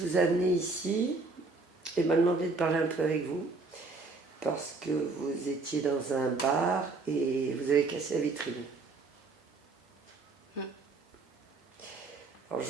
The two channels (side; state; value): left; quieter; 3.7 dB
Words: a amené ici et m'a demandé de parler un peu avec vous parce que vous étiez dans un bar et vous avez cassé la vitrine. Alors je